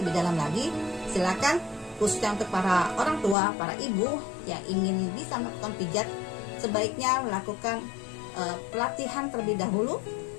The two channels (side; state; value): right; drops out; at 3.4 s